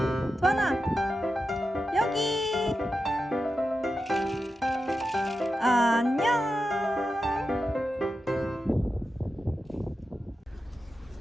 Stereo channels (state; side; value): normal; both; correlation 0.90